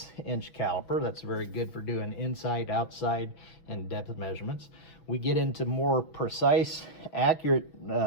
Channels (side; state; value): right; late; 6.0 ms